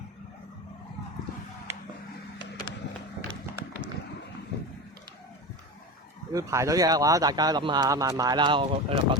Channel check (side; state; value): both; normal; correlation 0.25